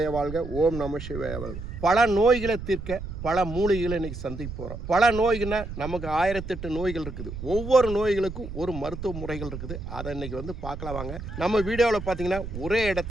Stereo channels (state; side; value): noise; right; rumble, 9 dB below the sound